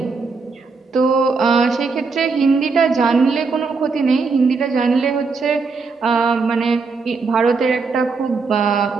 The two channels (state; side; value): quieter; left; 4.5 dB